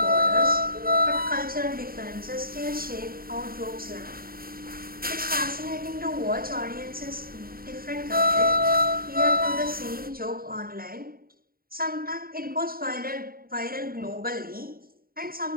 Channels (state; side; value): late; left; 0.43 ms